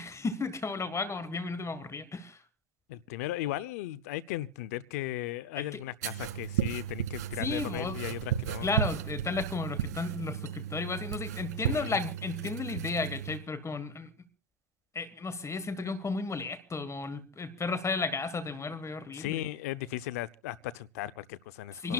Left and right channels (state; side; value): normal; both; correlation 0.15